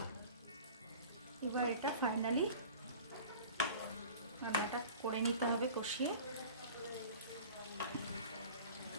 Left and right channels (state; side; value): inverted; both; correlation -0.41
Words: এবার এটা ফাইনালি রান্নাটা করে নিতে হবে কষিয়ে।